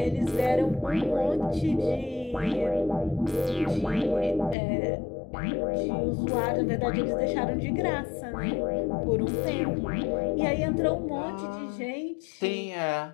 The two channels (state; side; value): drops out; right; at 4.5 s